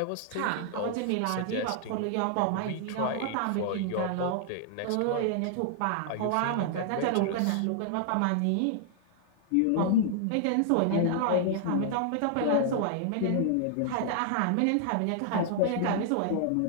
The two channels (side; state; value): both; different; correlation -0.01